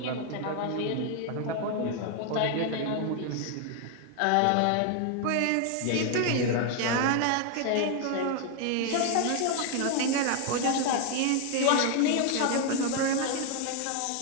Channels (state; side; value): different; both; correlation 0.00